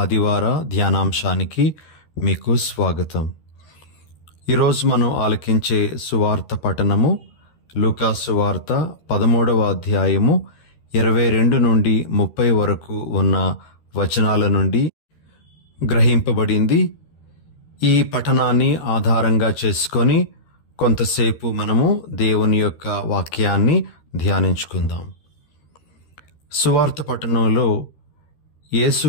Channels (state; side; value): late; right; 13 ms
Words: ధ్యానాంశానికి మీకు స్వాగతం. ఈరోజు మనం ఆలకించే సువార్త పఠనము లూకా సువార్త 13వ అధ్యాయము 22 నుండి 30 వరకు ఉన్న వచనాల నుండి గ్రహింపబడింది. ఈ పఠనాన్ని ఆధారంగా చేసుకొని కొంతసేపు మనము దేవుని యొక్క వాక్యాన్ని ధ్యానించుకుందాం. సువార్త పట్టణంలో యేసు